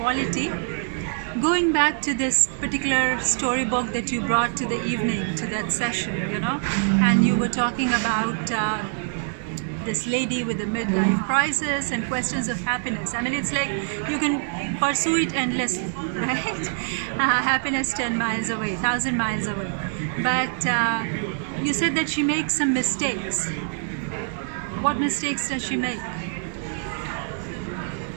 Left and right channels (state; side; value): silent; left; digital silence